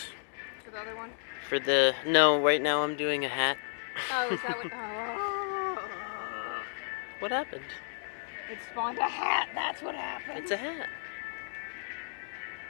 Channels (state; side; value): silent; right; digital silence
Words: For the other one? For the... No, right now I'm doing a hat. Oh, is that what... Oh. What happened? It spawned a hat. That's what happened. It's a hat.